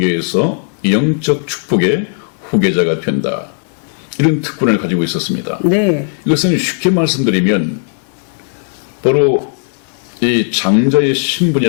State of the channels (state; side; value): silent; right; 65 dB below the other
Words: 영적 축복의 후계자가 된다. 이런 특권을 가지고 있었습니다. 네. 이것은 쉽게 말씀드리면 바로 이 장자의